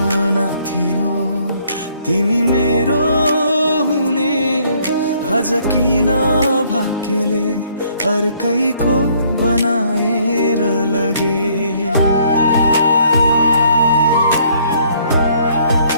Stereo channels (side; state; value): both; inverted; correlation -0.64